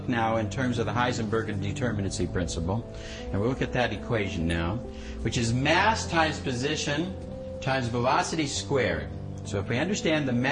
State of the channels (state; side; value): identical; both; correlation 1.00